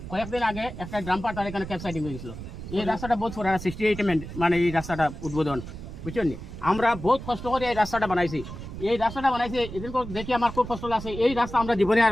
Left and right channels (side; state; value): right; noise; rumble, 10 dB below the sound